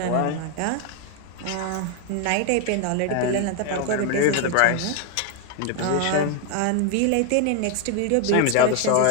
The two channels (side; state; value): both; different; correlation 0.00